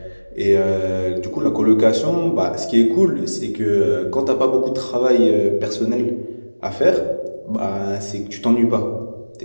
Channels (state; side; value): inverted; both; correlation -1.00